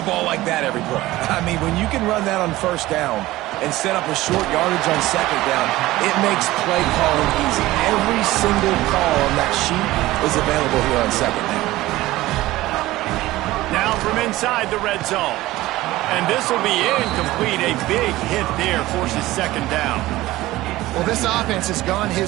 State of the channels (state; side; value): quieter; left; 17.3 dB